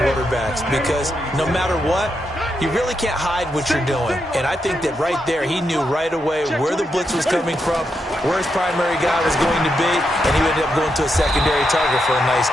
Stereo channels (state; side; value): normal; both; correlation 0.83